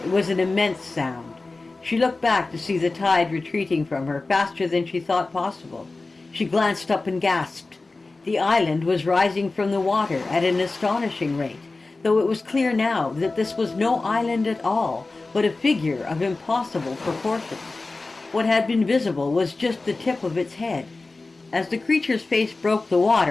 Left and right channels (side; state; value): right; quieter; 3.5 dB